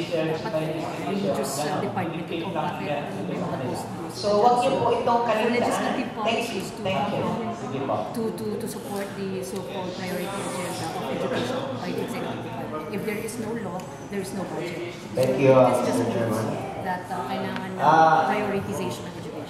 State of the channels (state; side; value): identical; both; correlation 1.00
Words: my institution, so wag niyo po itong kalimutan. Legislative policies to to support the so-called priority agenda of education by the executive department. If there is no law, there is no budget. Thank you, It's just Mr. Chairman. that kailangan ng prioritization of